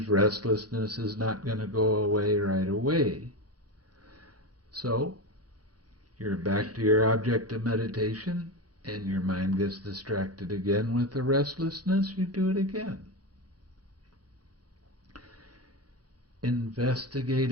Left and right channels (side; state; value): left; late; 0.69 ms